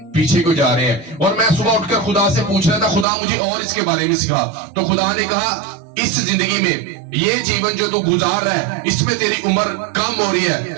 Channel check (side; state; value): left; drops out; at 3.1 s